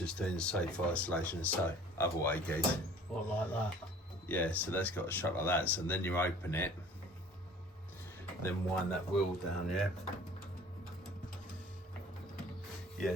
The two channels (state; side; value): normal; both; correlation 0.49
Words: doing the safe isolation, so other way, guys. What, like that? Yeah, so that's got to shut like that. So then you open it, then wind that wheel down, yeah? Yeah,